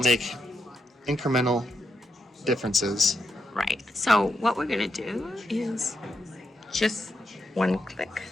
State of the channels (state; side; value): normal; both; correlation 0.84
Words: make incremental differences. Right. So what we're going to do is just one click.